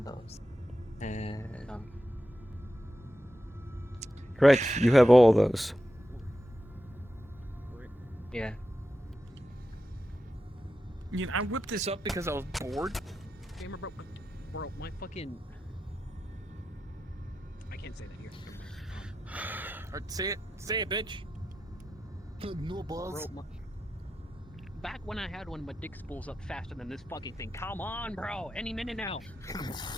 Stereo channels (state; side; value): normal; both; correlation 0.90